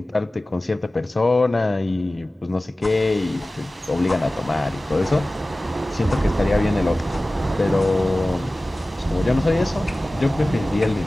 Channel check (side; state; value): both; normal; correlation 0.97